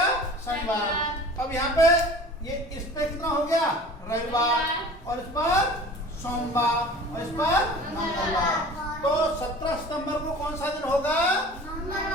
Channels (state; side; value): normal; both; correlation 0.43